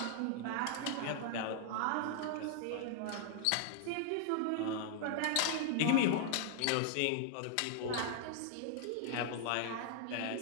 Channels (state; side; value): different; both; correlation -0.01